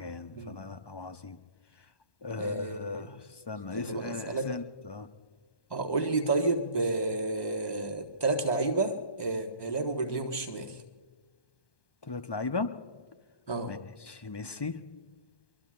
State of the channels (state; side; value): late; right; 1.2 ms